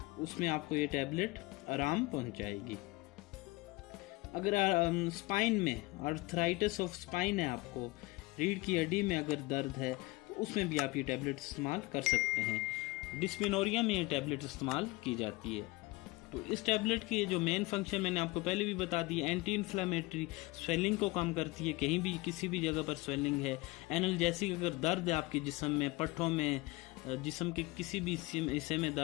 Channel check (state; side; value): quieter; right; 22.4 dB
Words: उसमें आपको ये टैबलेट आराम पहुंचाएगी। अगर स्पाइन में आर्थराइटिस ऑफ स्पाइन है, आपको रीढ़ की हड्डी में अगर दर्द है, तो उसमें भी आप ये टैबलेट इस्तेमाल कर सकते हैं। डिस्मेनोरिया में ये टैबलेट इस्तेमाल की जाती है। तो इस टैबलेट की जो मेन फंक्शन मैंने आपको पहले भी बता दी, एंटी इन्फ्लेमेटरी, स्वेलिंग को कम करती है, कहीं भी किसी भी जगह पर स्वेलिंग है, एनाल्जेसिक, अगर दर्द है आपके जिस्म में, पट्ठों में, जिस्म के किसी भी हिस्से में